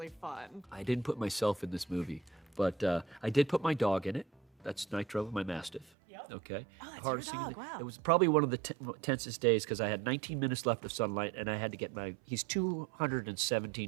fun. I didn't put myself in this movie, but I did put my dog in it. That's Nitro, my Mastiff. Yep. Okay. Oh, that's Hardest your thing dog, wow. It was probably one of the tensest days, because I had 19 minutes left of sunlight, and I had to get he's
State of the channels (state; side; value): drops out; left; at 5.9 s